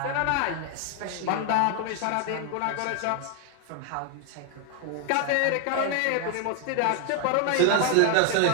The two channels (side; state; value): both; different; correlation 0.00